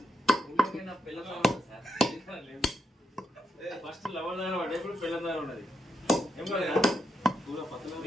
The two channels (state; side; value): normal; both; correlation 0.82